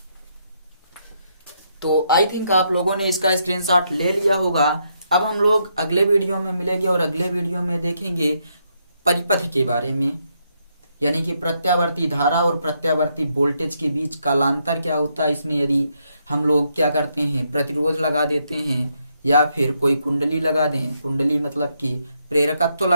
तो आई थिंक आप लोगों ने इसका स्क्रीनशॉट ले लिया होगा। अब हम लोग अगले वीडियो में मिलेंगे और अगले वीडियो में देखेंगे परिपथ के बारे में, यानी कि प्रत्यावर्ती धारा और प्रत्यावर्ती वोल्टेज के बीच कालांतर क्या होता है। इसमें यदि हम लोग क्या करते हैं, प्रतिरोध लगा देते हैं या फिर कोई कुंडली लगा दें, कुंडली मतलब कि प्रेरकत्व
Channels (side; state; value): both; inverted; correlation -0.77